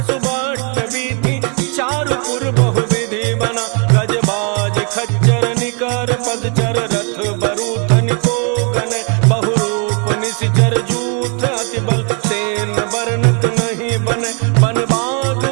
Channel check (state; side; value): quieter; left; 37.2 dB